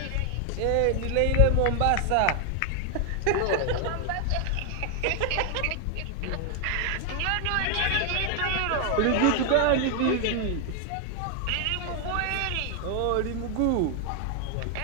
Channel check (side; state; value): both; different; correlation 0.00